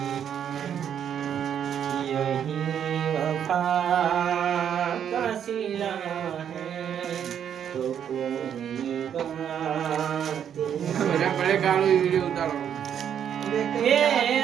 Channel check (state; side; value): quieter; left; 8.9 dB